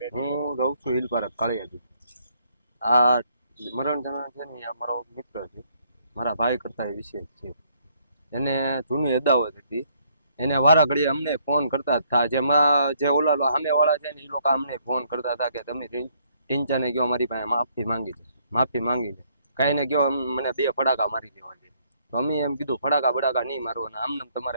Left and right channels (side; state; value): both; inverted; correlation -0.68